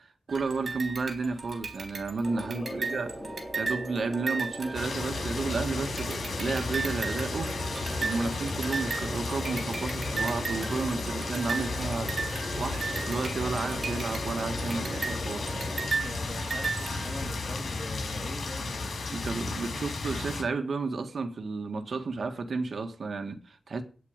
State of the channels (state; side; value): normal; both; correlation 0.89